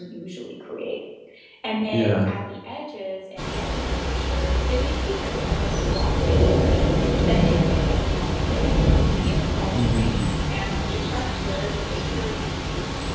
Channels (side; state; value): both; identical; correlation 1.00